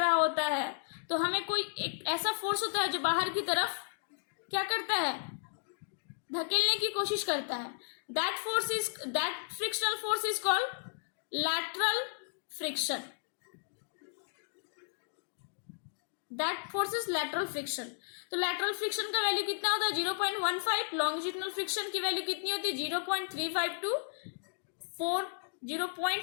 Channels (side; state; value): right; silent; digital silence